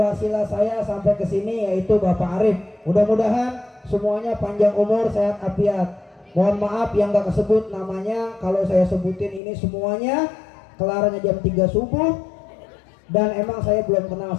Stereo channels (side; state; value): right; drops out; at 9.4 s